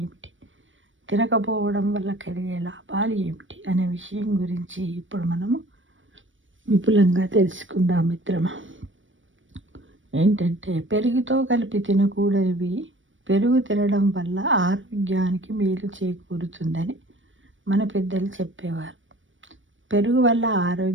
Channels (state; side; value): late; left; 0.56 ms